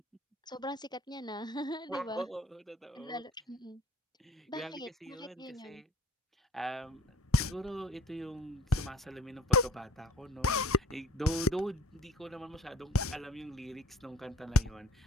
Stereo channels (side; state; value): both; normal; correlation 0.52